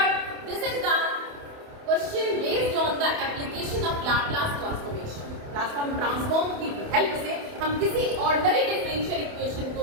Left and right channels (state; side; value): late; left; 28 ms